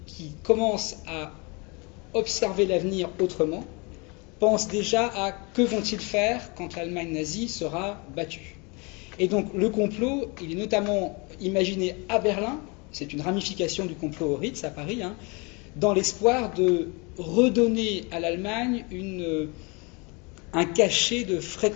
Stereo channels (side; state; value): right; quieter; 29.6 dB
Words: qui commencent à observer l'avenir autrement pensent déjà à que vont-ils faire quand l'Allemagne nazie sera battue. Et donc le complot, il est notamment imaginé à Berlin, c'est une ramification du complot au Ritz à Paris, dans l'espoir de redonner à l'Allemagne un cachet de